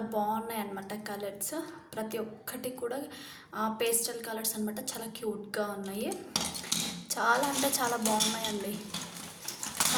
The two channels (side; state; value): both; identical; correlation 1.00